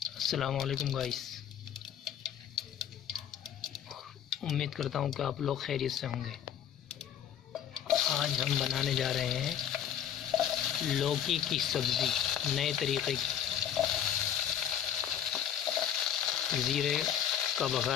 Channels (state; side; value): quieter; right; 9.5 dB